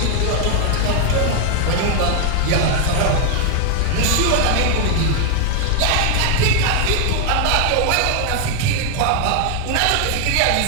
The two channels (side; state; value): both; different; correlation 0.00